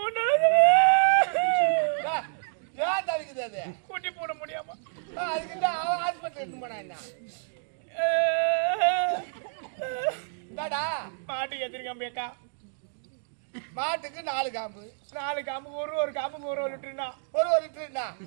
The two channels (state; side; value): silent; left; digital silence